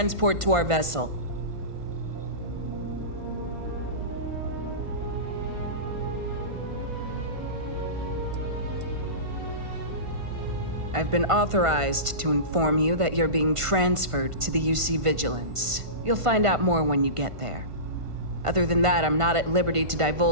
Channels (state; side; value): late; left; 1.5 ms